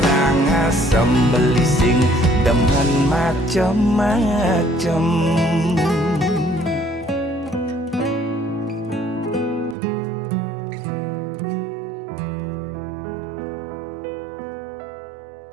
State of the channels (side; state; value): left; drops out; at 9.8 s